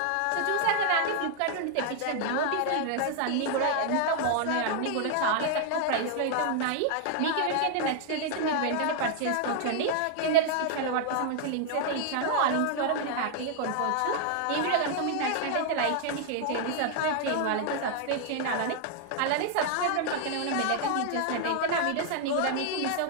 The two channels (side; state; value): both; different; correlation 0.00